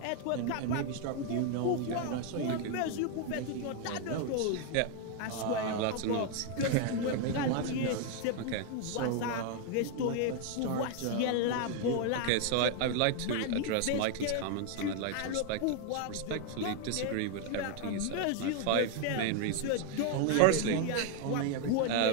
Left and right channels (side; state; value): both; different; correlation 0.01